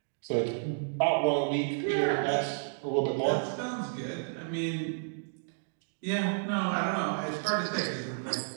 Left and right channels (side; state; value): left; silent; digital silence